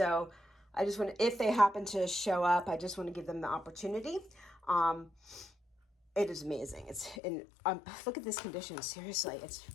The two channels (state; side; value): drops out; right; at 7.2 s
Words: I just want to, if they happen to show up, I just want to give them the opportunity. It is amazing. It's in, look at this condition. Seriously, it's